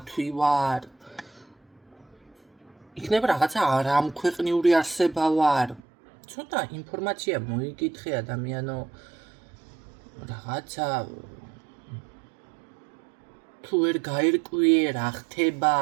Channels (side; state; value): left; drops out; at 5.8 s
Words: ვარ, იქნება რაღაცა არამქვეყნიური არსება ვარ. ცოტა ინფორმაცია მოიკითხე ადამიანო, რაღაცა თუ ვერ გაერკვიე რა ხდება,